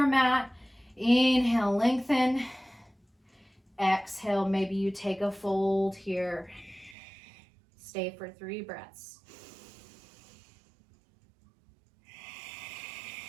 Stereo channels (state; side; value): drops out; left; at 7.0 s